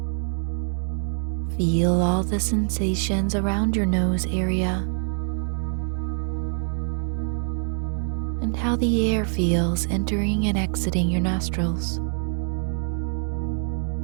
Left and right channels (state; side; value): silent; left; digital silence